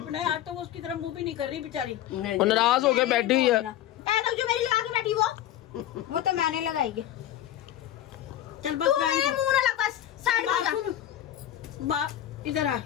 आज तो वो उसकी तरफ मुंह भी नहीं कर रही बेचारी। वो नाराज होके बैठी हुई है। जो मेरी लगा के बैठी वो तो मैंने लगाई है। चल बस मुंह ना लग, बस साइड में जा। इधर आ।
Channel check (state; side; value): quieter; right; 12.3 dB